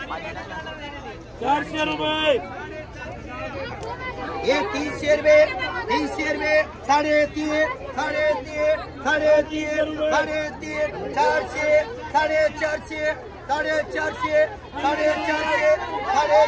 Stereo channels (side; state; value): both; identical; correlation 1.00